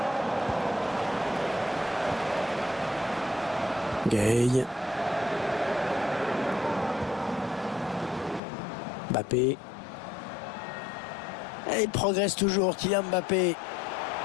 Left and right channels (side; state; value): right; drops out; at 8.4 s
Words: Gay. Mbappé. Et il progresse toujours, Kylian Mbappé.